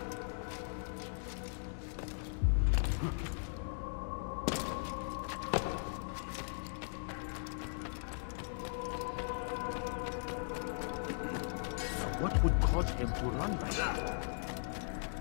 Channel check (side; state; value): right; silent; digital silence